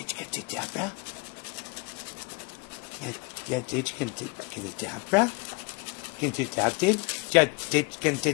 gonna do a dab, bruh? Yeah, dude, you gonna get a dab, bruh? You gonna do a dab, dude? Yeah, dude, you gonna do a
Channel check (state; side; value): quieter; right; 29.2 dB